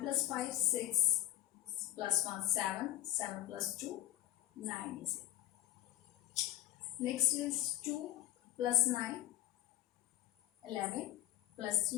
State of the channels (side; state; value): right; quieter; 14.2 dB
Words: 5, 6. Plus 1, 7. 7 plus 2, 9 is it. Next is 2 plus 9, 11. Plus